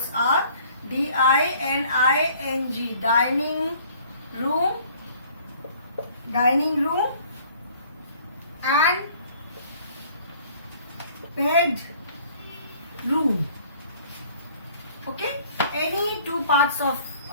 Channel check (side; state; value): both; inverted; correlation -0.55